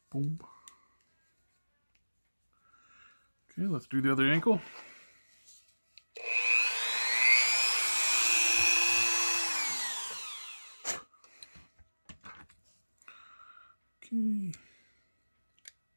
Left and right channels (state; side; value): inverted; both; correlation -1.00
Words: Boom. Okay, let's do the other ankle. Okay.